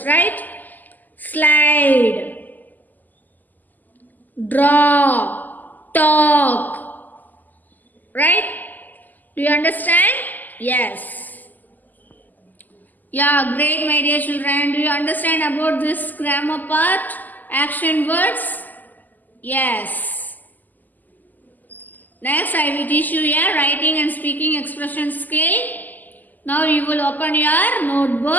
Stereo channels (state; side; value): late; right; 0.084 ms